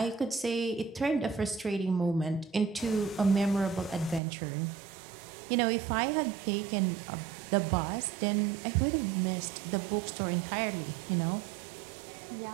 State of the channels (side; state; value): left; drops out; at 4.2 s